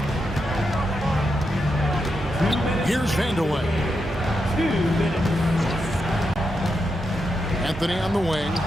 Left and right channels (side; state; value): both; normal; correlation 0.85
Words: Here's Vanderwood. Anthony on the wing,